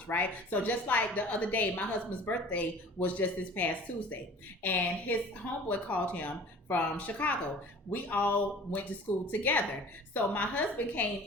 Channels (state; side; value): normal; both; correlation 0.45